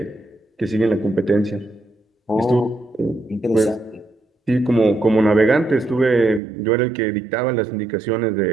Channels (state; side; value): drops out; left; at 6.4 s